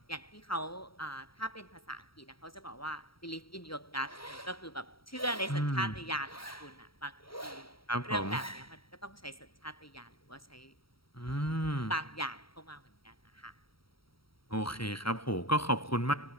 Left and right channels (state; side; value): late; right; 0.75 ms